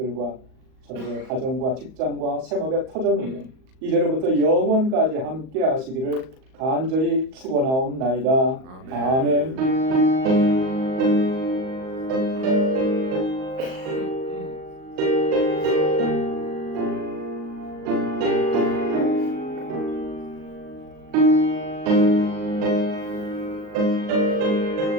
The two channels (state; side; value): late; left; 38 ms